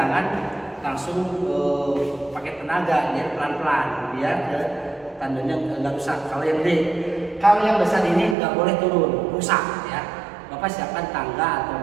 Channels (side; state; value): left; drops out; at 8.3 s